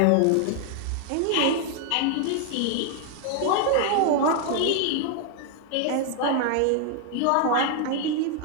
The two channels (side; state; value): both; different; correlation 0.00